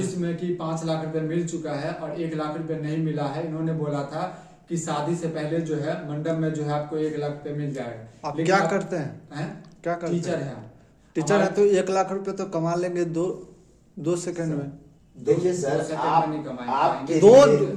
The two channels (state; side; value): identical; both; correlation 1.00